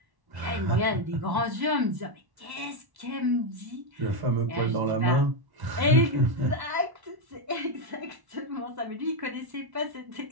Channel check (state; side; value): late; left; 1.1 ms